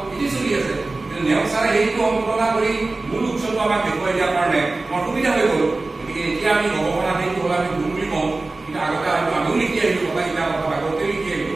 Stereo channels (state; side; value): quieter; left; 3.3 dB